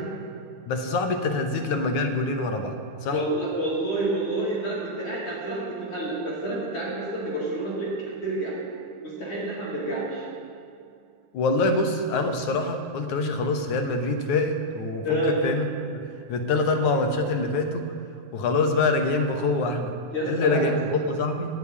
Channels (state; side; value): late; right; 9.5 ms